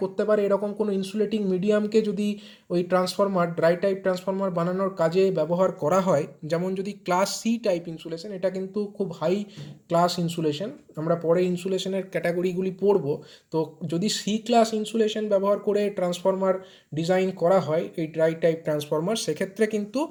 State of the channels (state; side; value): identical; both; correlation 1.00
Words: করতে পারে এরকম কোনো ইনসুলেটিং মিডিয়ামকে যদি ওই ট্রান্সফরমার ড্রাই টাইপ ট্রান্সফরমার বানানোর কাজে ব্যবহার করা হয়, যেমন যদি ক্লাস সি টাইপ ইনসুলেশন, এটা কিন্তু খুব হাই ক্লাস ইনসুলেশন, আমরা পরে ইনসুলেশনের ক্যাটাগরিগুলি পড়ব। তো যদি সি ক্লাস ইনসুলেশন ব্যবহার করে ট্রান্সফরমার ডিজাইন করা হয় এই ড্রাই টাইপ ট্রান্সফরমার, সেক্ষেত্রে কিন্তু